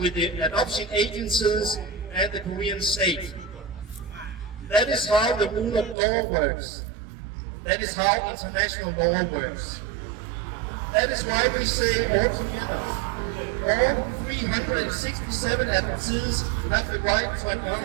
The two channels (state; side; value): drops out; left; at 6.0 s